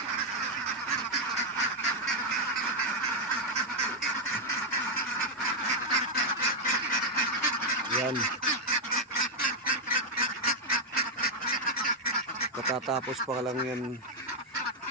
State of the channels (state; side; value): normal; both; correlation 0.00